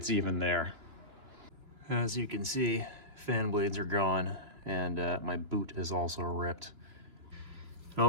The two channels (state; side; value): late; left; 2.9 ms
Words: even there. As you can see, fan blades are gone, and my boot is also ripped. In